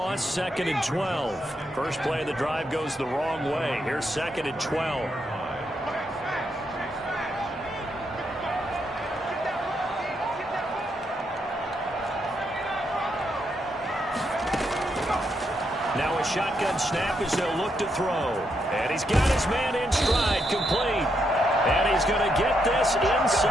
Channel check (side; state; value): both; normal; correlation 0.79